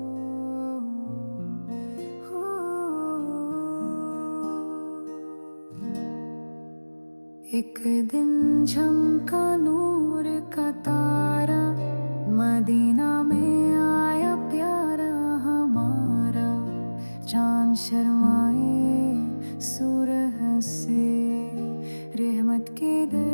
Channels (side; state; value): both; inverted; correlation -1.00